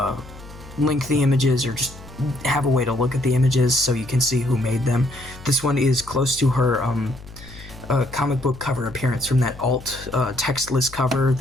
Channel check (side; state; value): left; noise; hum, 17 dB below the sound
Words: link the images, or just have a way to look at the images so you can see who made them. This one is close to her comic book cover appearance from that alt textless cover